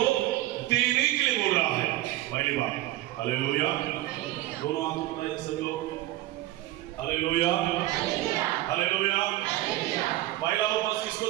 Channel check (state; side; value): quieter; left; 16.1 dB